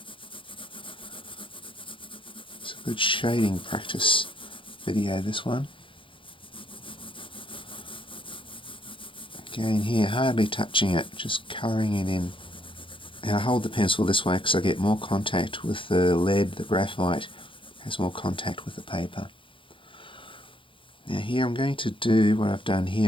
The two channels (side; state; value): right; late; 0.25 ms